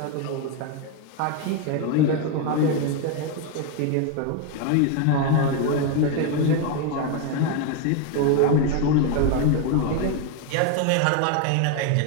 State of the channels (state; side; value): different; both; correlation 0.01